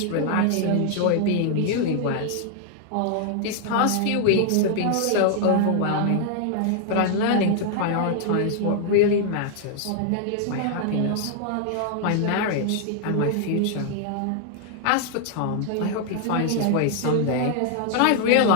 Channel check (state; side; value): different; both; correlation 0.00